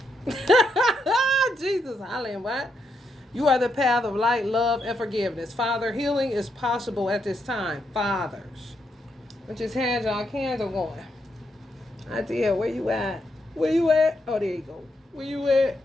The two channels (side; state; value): both; normal; correlation 0.79